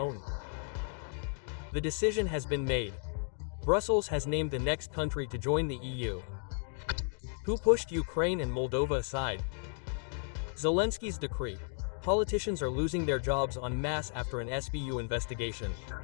The decision has been made. Brussels has named the next country to join the EU. Who pushed Ukraine and Moldova aside? Zelensky's decree. Politicians are losing their jobs en masse after an SBU investigation.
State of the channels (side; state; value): right; silent; 55 dB below the other